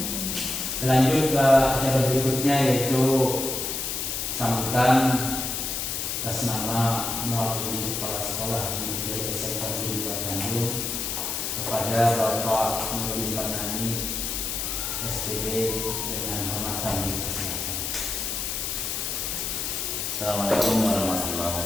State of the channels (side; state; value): left; noise; hiss, 2 dB below the sound